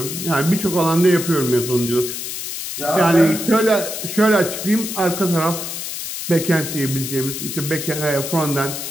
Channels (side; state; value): left; noise; hiss, 6 dB below the sound